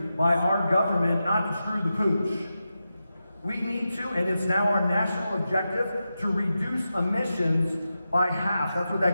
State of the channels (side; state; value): both; inverted; correlation -0.90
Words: by our government not to screw the pooch. We need to, and it's now our national objective, to reduce emissions by half. That's what